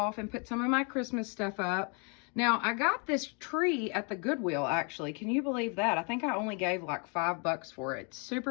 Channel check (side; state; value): right; quieter; 35.7 dB